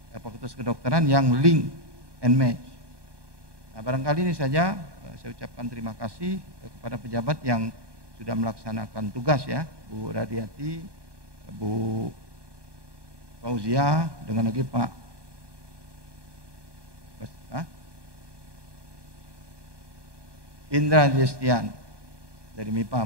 Fakultas Kedokteran yang link and match. Nah, barangkali ini saja saya ucapkan terima kasih kepada pejabat yang sudah melaksanakan tugas ya, Bu Radiati, Bu Fauzia, dengan lagi Pak Indra Destian dari MIPA.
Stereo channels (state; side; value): late; left; 1.2 ms